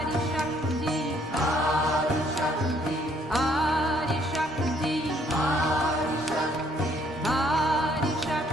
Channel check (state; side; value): normal; both; correlation 0.65